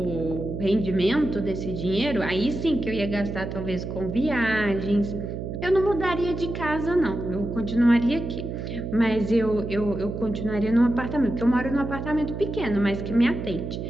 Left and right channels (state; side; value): noise; right; hum, 6 dB below the sound